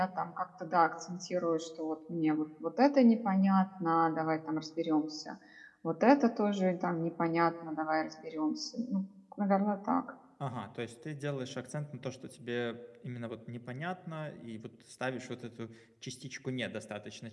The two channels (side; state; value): both; identical; correlation 1.00